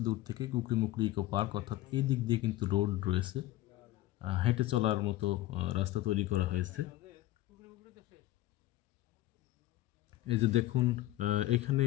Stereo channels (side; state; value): right; quieter; 15.7 dB